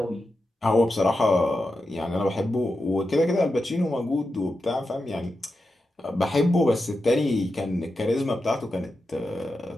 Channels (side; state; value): both; normal; correlation 0.89